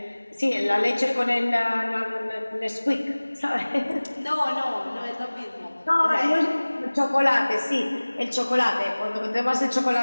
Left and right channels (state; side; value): inverted; both; correlation -1.00